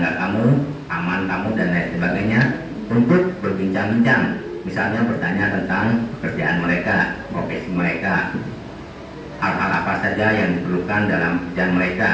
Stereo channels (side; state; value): both; identical; correlation 1.00